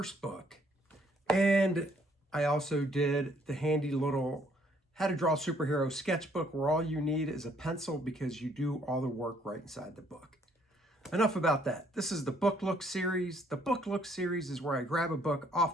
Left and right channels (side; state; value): both; normal; correlation 0.65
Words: book. And I also did the handy little How to Draw Superhero sketchbook where all you need is a pencil because you do all the work right inside the book. Enough about that. This is the Book Look series. The Book Look series is where I grab a book